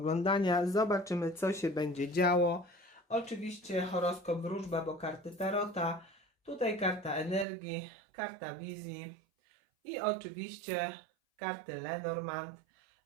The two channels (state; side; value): drops out; left; at 7.5 s